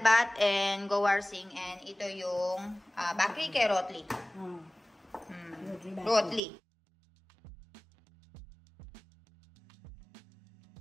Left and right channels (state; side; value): drops out; left; at 6.4 s